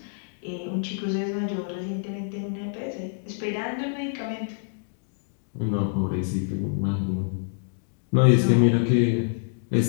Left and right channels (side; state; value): right; silent; digital silence